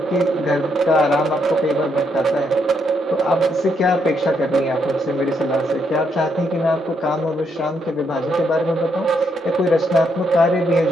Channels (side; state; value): both; normal; correlation 0.76